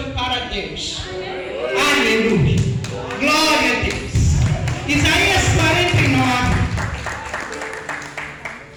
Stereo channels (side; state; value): both; identical; correlation 1.00